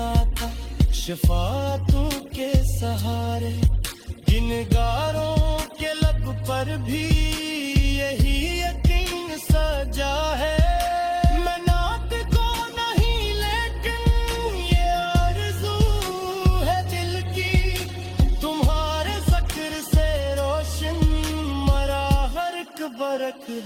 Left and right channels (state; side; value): identical; both; correlation 1.00